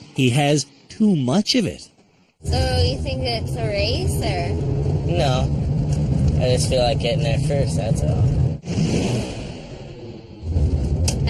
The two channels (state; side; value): identical; both; correlation 1.00